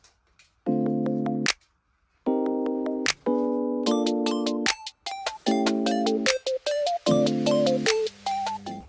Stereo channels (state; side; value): identical; both; correlation 1.00